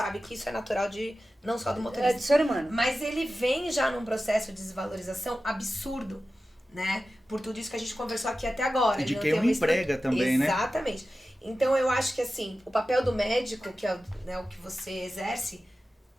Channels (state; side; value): normal; both; correlation 0.94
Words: que isso é natural não só do motorista. É do ser humano. Mas ele vem já num processo de desvalorização absurdo, né? Por tudo isso que a gente conversou aqui até agora. E de quem o emprega também, né? Exatamente. Então eu acho que assim, o papel do médico, que é o que você exerce,